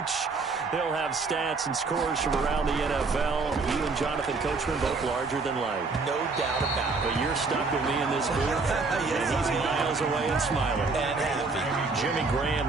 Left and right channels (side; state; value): left; quieter; 4.1 dB